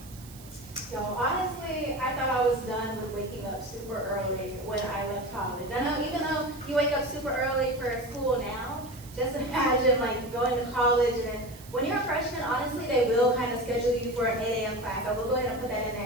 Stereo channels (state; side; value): noise; right; hiss, 20 dB below the sound